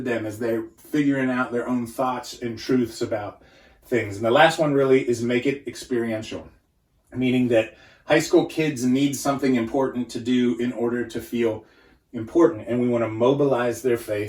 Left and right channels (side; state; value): both; identical; correlation 1.00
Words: them as they're figuring out their own thoughts and truths about things. And the last one really is make it experiential, meaning that high school kids need something important to do in order to feel important. And we want to mobilize their